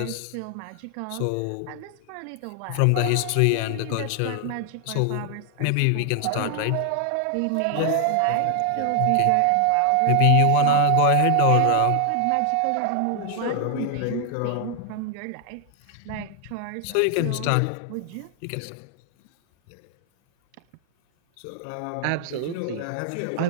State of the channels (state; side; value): different; both; correlation 0.00